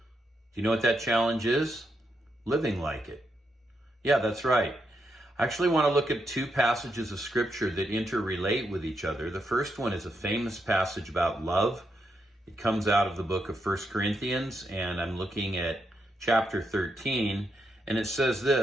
you know what that challenge is? Living like it. Yeah, that's right. I actually want to look at two passages of scripture that interrelate with each other. The first one is a famous passage about love. It comes out of the book of 1 Corinthians, and I'm looking at chapter 13, and it says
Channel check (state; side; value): normal; both; correlation 0.81